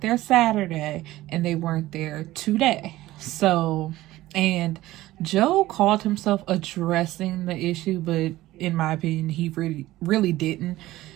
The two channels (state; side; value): quieter; left; 16.5 dB